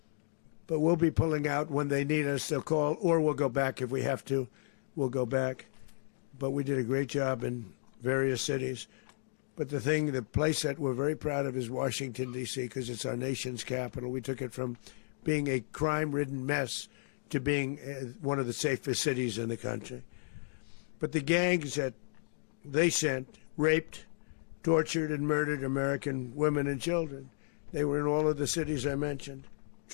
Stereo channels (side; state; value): right; silent; digital silence